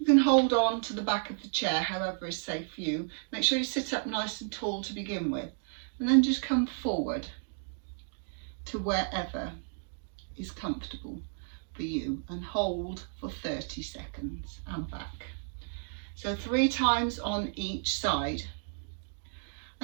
you can hold on to the back of the chair however is safe for you. Make sure you sit up nice and tall to begin with, and then just come forward to wherever is comfortable for you and hold for 30 seconds and back. So 3 times on each side,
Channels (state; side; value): silent; left; digital silence